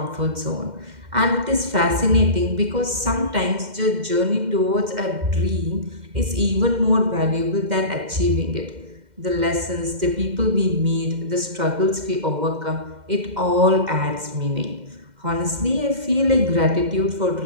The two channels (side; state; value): left; late; 2.1 ms